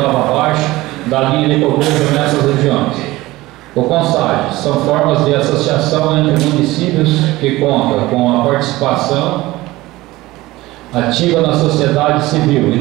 abaixo da linha de pobreza nessas regiões. O CONSAG são formas de associação entre municípios que contam com a participação ativa na sociedade civil e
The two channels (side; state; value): left; quieter; 18.7 dB